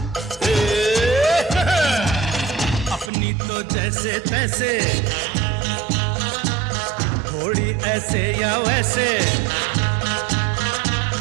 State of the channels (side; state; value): left; drops out; at 3.1 s